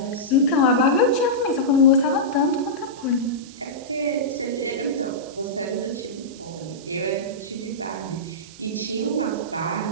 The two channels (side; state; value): right; noise; hiss, 20 dB below the sound